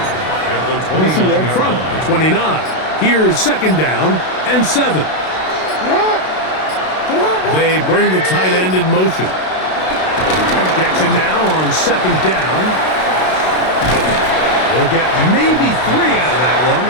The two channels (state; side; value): late; right; 32 ms